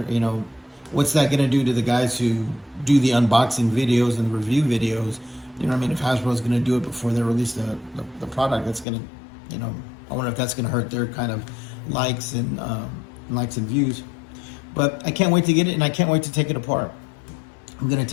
what's that going to do to the guys who do the unboxing videos and review videos? You know what I mean? If Hasbro's going to do it before they release the product, that's going to, I wonder if that's going to hurt their kind of likes and views. But I can't wait to get it, and I can't wait to take it apart. I'm going to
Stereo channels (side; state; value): right; drops out; at 8.8 s